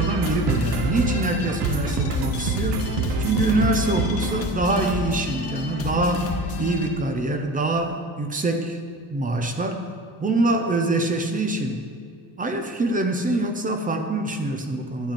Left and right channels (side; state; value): both; normal; correlation 0.38